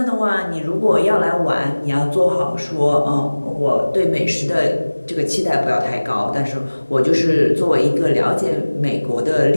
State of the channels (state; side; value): inverted; both; correlation -1.00